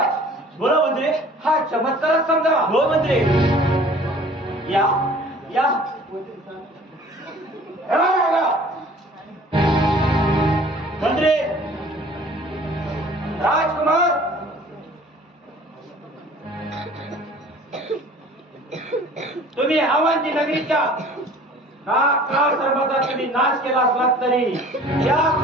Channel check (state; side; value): normal; both; correlation 0.49